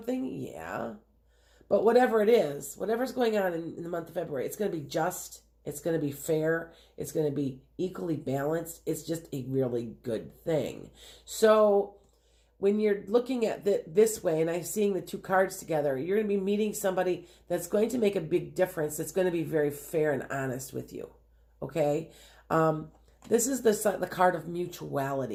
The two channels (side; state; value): both; identical; correlation 1.00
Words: Yeah. But whatever it is, whatever's going on in the month of February, it's going to be just, it's going to be fair, it's going to be equally balanced. It's just a really good thing. So when you're looking at this way, and I'm seeing the two cards together, you're going to be meeting somebody that's going to make a big difference. That's going to be very fair and honest with you. Okay? This is the card of